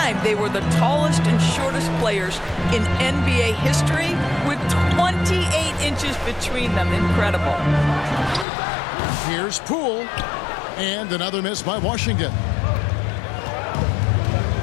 they were the tallest and shortest players in NBA history with 28 inches between them. Incredible. Here's Poole. And another miss by Washington.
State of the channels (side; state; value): right; drops out; at 8.5 s